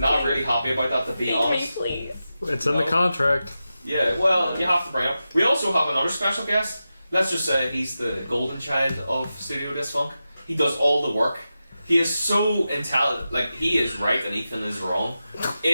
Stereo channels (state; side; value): inverted; both; correlation -0.91